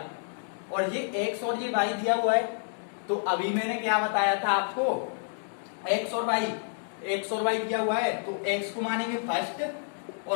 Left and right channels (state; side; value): silent; right; digital silence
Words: और ये x और ये y दिया हुआ है। तो अभी मैंने क्या बताया था आपको, x और y दिया हुआ है, तो x को मानेंगे फर्स्ट